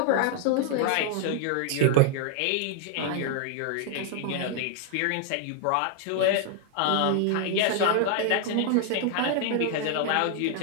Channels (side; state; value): both; different; correlation 0.00